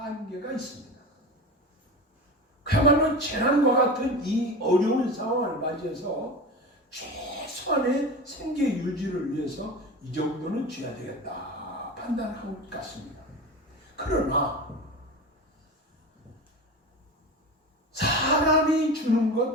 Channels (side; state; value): both; normal; correlation 0.29